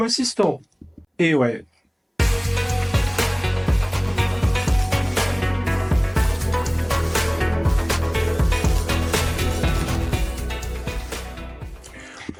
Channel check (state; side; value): identical; both; correlation 1.00